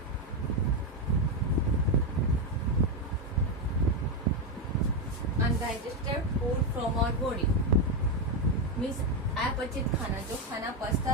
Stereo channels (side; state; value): both; normal; correlation 0.07